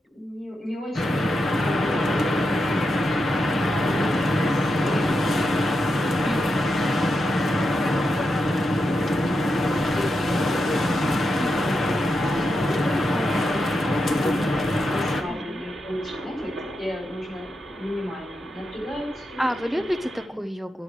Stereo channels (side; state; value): both; normal; correlation 0.86